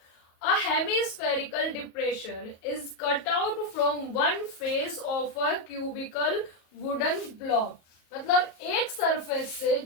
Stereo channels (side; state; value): right; late; 37 ms